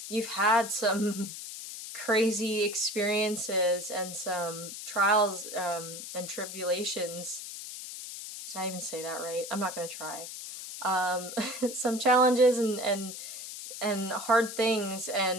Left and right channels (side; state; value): left; noise; hiss, 9 dB below the sound